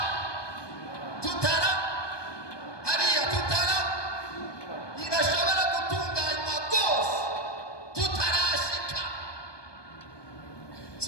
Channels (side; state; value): right; late; 1.2 ms